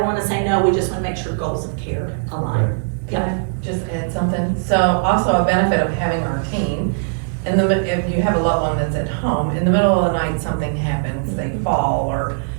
say no, we just wanna make sure goals of care align. Can I just add something? So also a benefit of having our team, if you have a loved one that's at home, in the middle of the night something happens, they fall or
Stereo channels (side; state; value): left; silent; 66 dB below the other